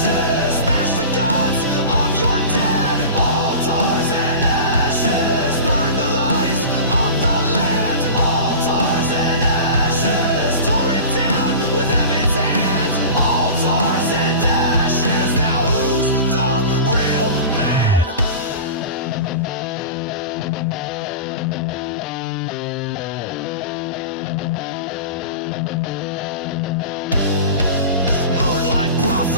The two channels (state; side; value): inverted; both; correlation -0.33